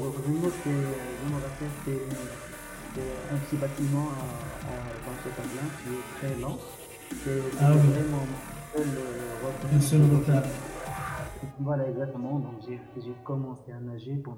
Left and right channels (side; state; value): both; identical; correlation 1.00